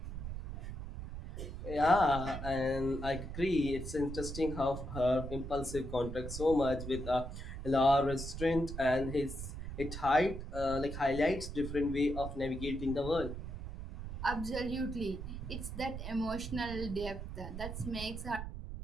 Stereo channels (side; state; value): right; noise; rumble, 7 dB below the sound